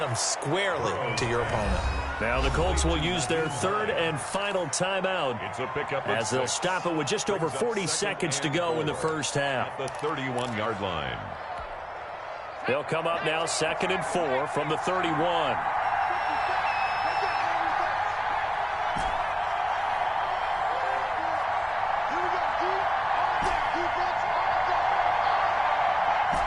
squarely to your opponent. Now the Colts will use their third and final timeout It's a pickup as they'll stop it with just over 40 seconds to go in the first half. At the 31-yard line. They'll come up now 2nd and 4 from the 31.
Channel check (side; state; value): both; identical; correlation 1.00